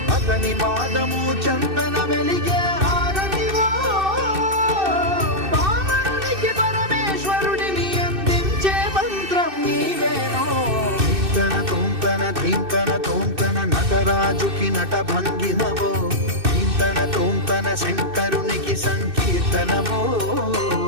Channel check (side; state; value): left; late; 2.6 ms